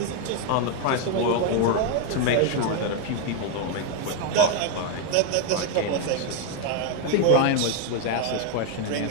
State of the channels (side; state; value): both; different; correlation 0.01